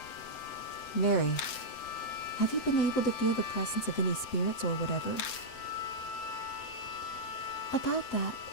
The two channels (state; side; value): late; right; 7.8 ms